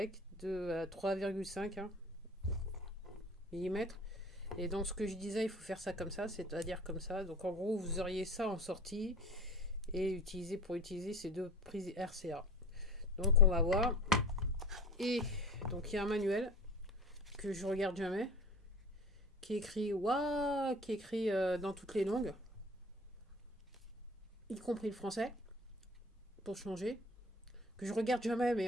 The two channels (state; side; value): normal; both; correlation 0.39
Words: de 3,5 mm. Et donc ce que je disais, il faut faire ça comme ça, c'est-à-dire comme ça. Donc en gros, vous auriez ça en sortie et utiliser ces deux prises RCA. Donc on va voir. Et donc il y a un manuel que je regarde jamais, qui est écrit waouh, qui est écrit dans toutes les langues, y compris le français, pour changer. Que je regarde jamais,